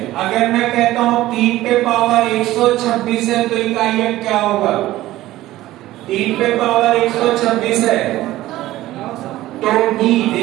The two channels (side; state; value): left; quieter; 15.8 dB